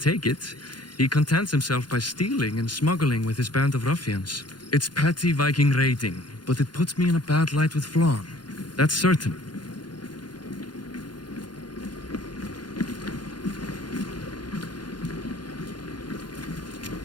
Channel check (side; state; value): right; late; 0.71 ms